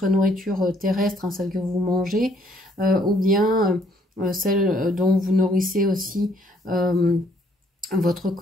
nourriture terrestre, hein, celle que vous mangez, ou bien celle dont vous nourrissez aussi votre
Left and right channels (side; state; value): both; normal; correlation 0.66